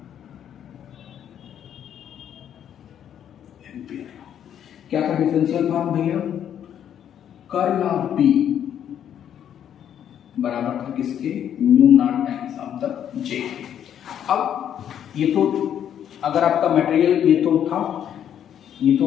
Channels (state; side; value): quieter; right; 9.6 dB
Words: क्या था डिफरेंशियल फॉर्म भैया, कर्ल ऑफ बी बराबर था किसके, mu naught times of the J. अब ये तो अगर आपका मटेरियल ये तो था, ये तो